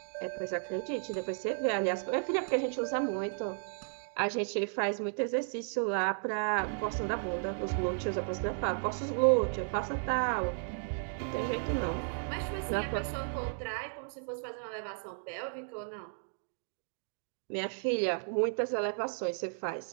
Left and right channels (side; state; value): left; silent; digital silence